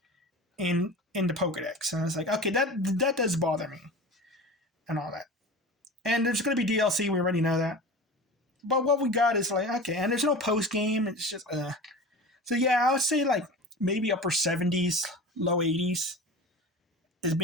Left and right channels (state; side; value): normal; both; correlation 0.33